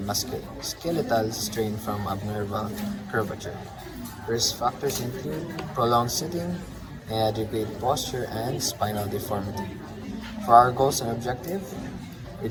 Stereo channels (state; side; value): identical; both; correlation 1.00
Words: musculoskeletal strain from abnormal curvature. Risk factors include prolonged sitting, inadequate posture, and spinal deformity. For our goals and objective,